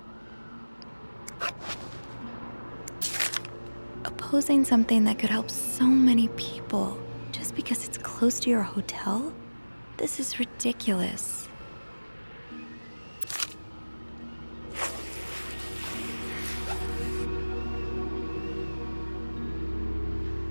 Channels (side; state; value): both; inverted; correlation -1.00